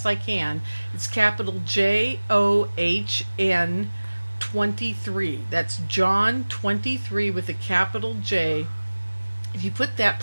I can, it's capital JOHN 23. That's John 23 with a capital J. If you put that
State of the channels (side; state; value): both; inverted; correlation -1.00